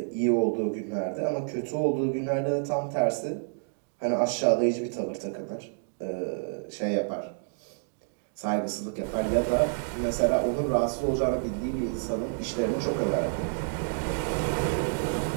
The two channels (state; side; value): silent; left; digital silence